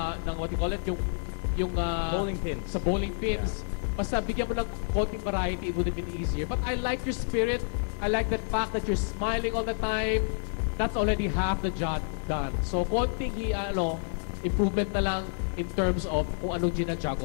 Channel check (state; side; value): silent; right; 58 dB below the other